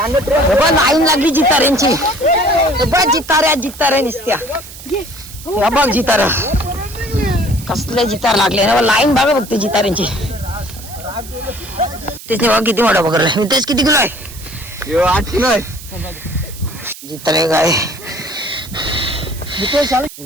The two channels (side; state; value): right; noise; hiss, 16 dB below the sound